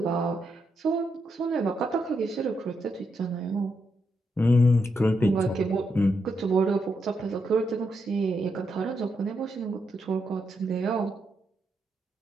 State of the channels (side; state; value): both; normal; correlation 0.82